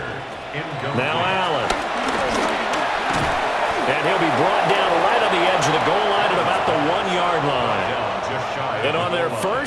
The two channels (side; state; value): both; identical; correlation 1.00